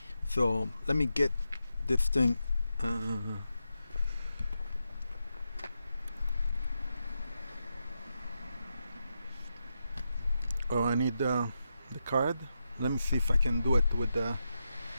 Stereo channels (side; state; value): both; inverted; correlation -0.87